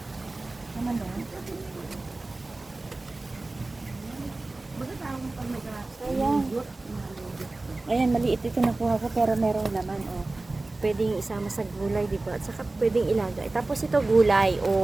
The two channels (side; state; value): left; quieter; 3.1 dB